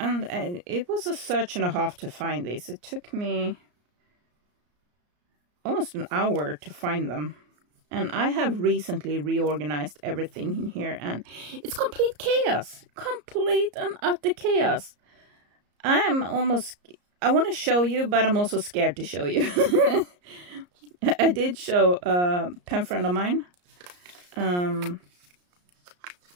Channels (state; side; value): late; left; 34 ms